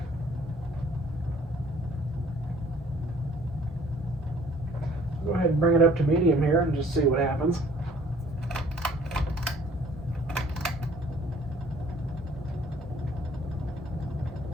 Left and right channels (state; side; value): normal; both; correlation 0.56